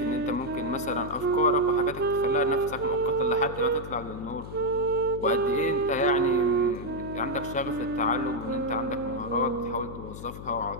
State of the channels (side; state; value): left; noise; hum, 11 dB below the sound